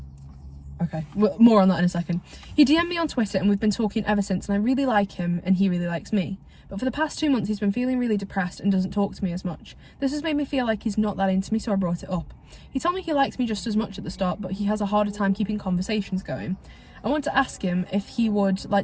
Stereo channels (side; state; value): both; identical; correlation 1.00